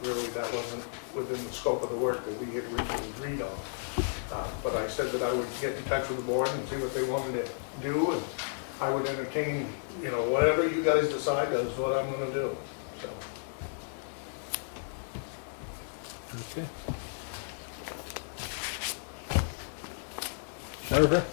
really that wasn't within the scope of the work that we had originally agreed on. But I said that I would get in touch with the board and see what they wanted to do, and I would entertain, whatever you guys decide is what I'm gonna do, so. Okay. Jennifer?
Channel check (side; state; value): right; silent; digital silence